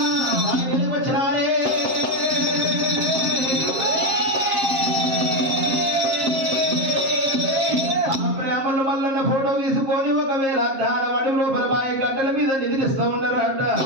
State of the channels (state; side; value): late; left; 7.5 ms